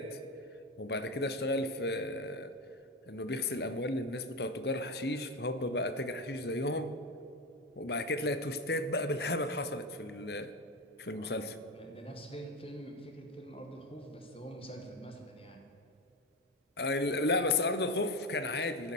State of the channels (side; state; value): both; normal; correlation 0.17